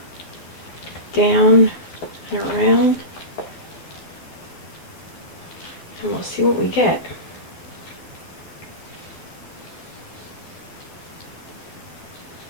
down and around, and we'll see what we get.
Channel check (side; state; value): right; late; 12 ms